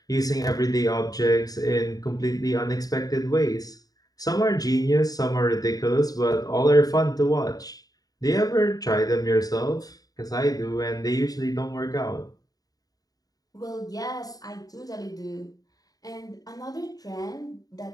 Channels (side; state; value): right; late; 0.18 ms